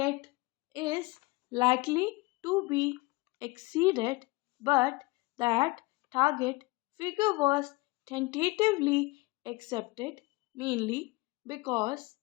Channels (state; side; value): quieter; right; 23.3 dB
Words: is likely to be exceeded, but that target figure was tentatively accepted mainly because